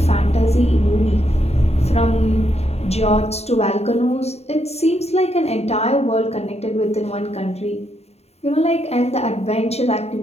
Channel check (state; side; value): late; right; 0.30 ms